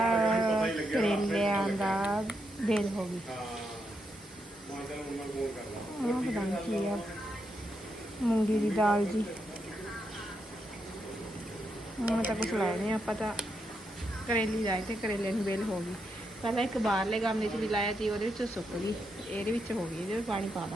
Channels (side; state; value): both; normal; correlation 0.82